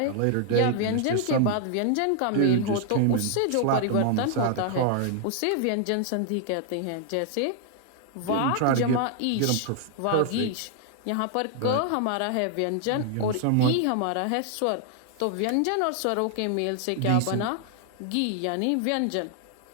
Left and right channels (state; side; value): different; both; correlation 0.00